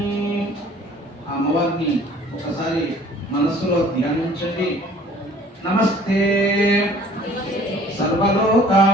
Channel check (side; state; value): both; normal; correlation 0.52